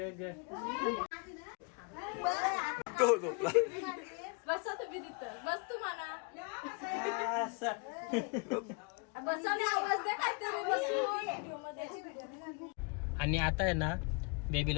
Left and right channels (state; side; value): quieter; right; 33.8 dB